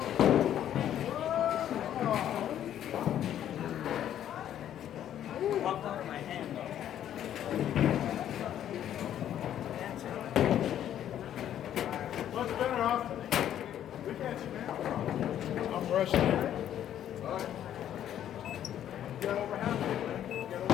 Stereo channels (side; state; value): right; quieter; 10.8 dB